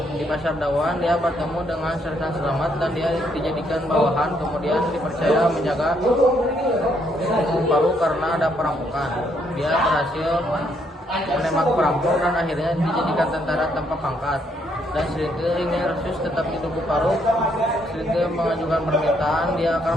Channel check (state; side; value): normal; both; correlation 0.72